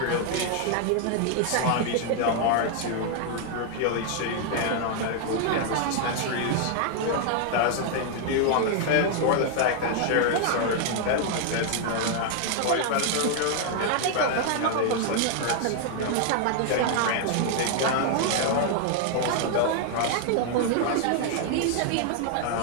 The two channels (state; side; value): different; both; correlation 0.00